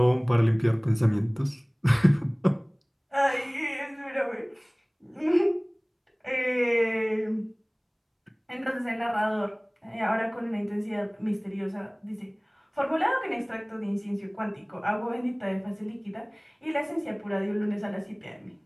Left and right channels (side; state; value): both; identical; correlation 1.00